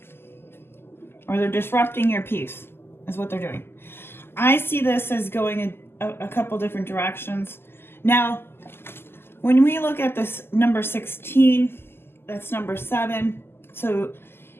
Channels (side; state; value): right; late; 0.11 ms